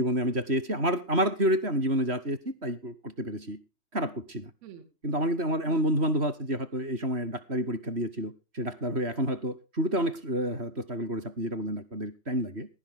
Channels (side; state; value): left; late; 3.1 ms